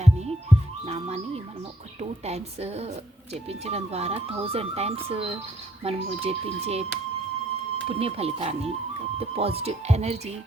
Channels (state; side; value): normal; both; correlation 0.68